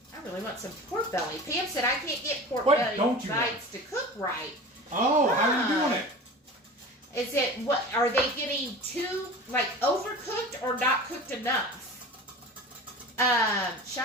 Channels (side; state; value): both; normal; correlation 0.35